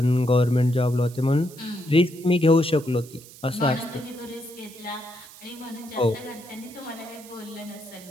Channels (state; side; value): noise; right; hiss, 19 dB below the sound